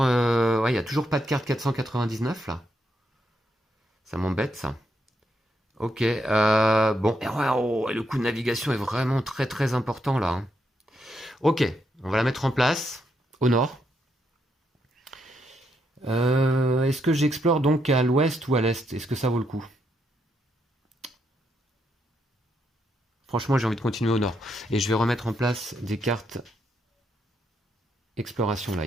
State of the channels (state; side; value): normal; both; correlation 0.79